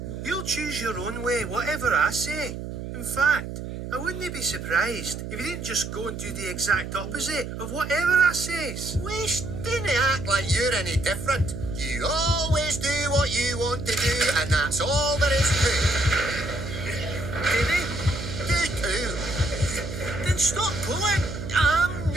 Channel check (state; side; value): noise; right; hum, 7 dB below the sound